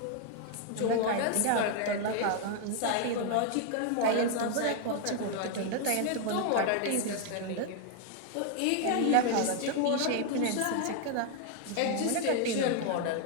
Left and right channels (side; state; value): both; different; correlation 0.00